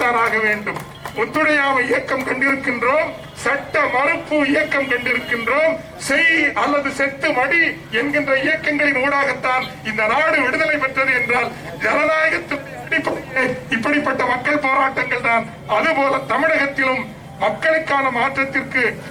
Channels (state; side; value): identical; both; correlation 1.00